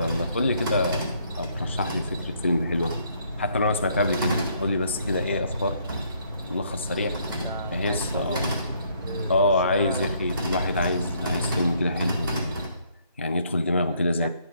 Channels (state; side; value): inverted; both; correlation -0.68